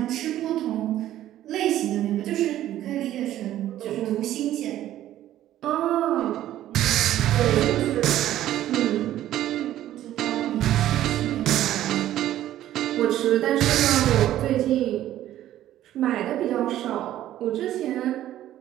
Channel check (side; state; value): left; quieter; 13.0 dB